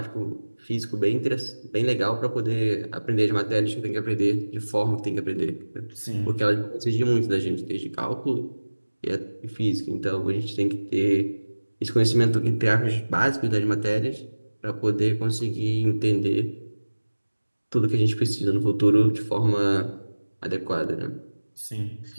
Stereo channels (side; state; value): both; inverted; correlation -1.00